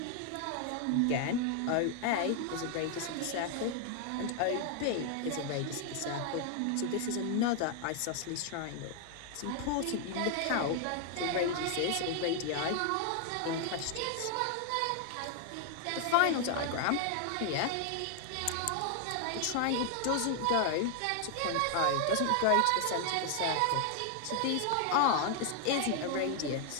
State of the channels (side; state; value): both; different; correlation 0.00